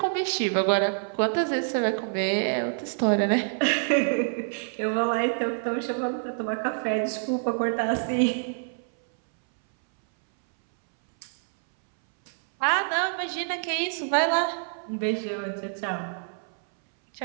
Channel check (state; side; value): silent; left; 60 dB below the other